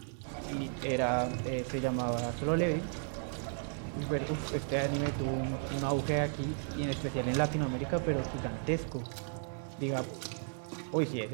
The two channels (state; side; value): silent; left; 55 dB below the other